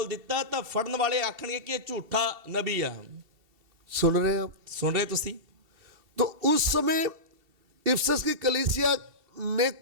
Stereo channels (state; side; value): late; left; 2.7 ms